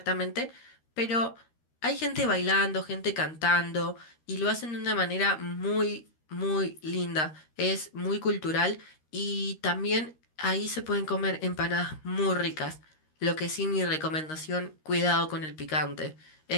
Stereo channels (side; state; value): right; late; 13 ms